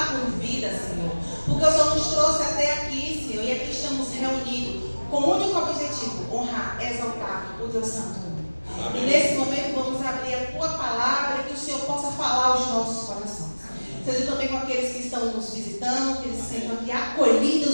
com vida, Senhor. Porque o Senhor nos trouxe até aqui, Senhor, e aqui estamos reunidos com o único objetivo: honrar, exaltar o teu santo nome. E nesse momento vamos abrir a tua palavra e que o Senhor possa falar aos nossos corações. Seja também com aqueles que estão nos visitando, que eles se sintam aqui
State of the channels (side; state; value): both; inverted; correlation -1.00